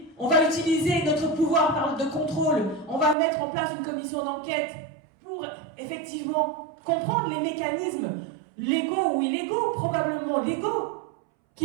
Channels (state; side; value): drops out; left; at 3.2 s